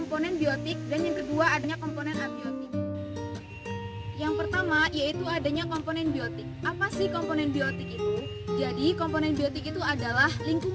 biotik, dan yang kedua, adanya komponen abiotik. Yang pertama, yaitu adanya komponen biotik. Apa sih komponen biotik itu? Jadi, komponen biotik itu adalah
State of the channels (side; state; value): both; identical; correlation 1.00